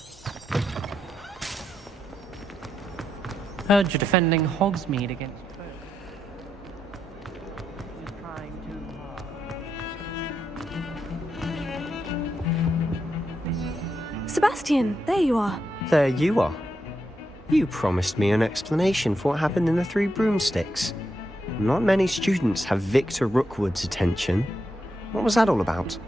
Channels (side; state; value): both; normal; correlation 0.83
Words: Heard you're defending Hogsmeade against Sebastian, there you are. There you are. You promised me an explanation for what happened in the Three Broomsticks. Not many students have Victor Rookwood's attention. What was that all about?